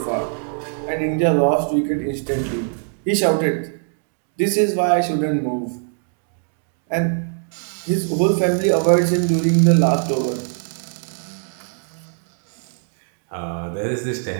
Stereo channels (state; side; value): silent; left; 62 dB below the other